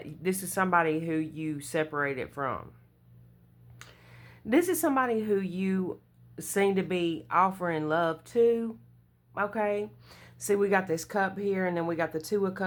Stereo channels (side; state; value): both; identical; correlation 1.00